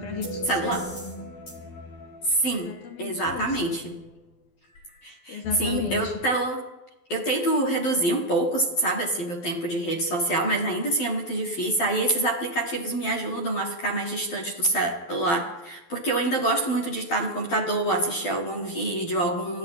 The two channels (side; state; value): right; late; 12 ms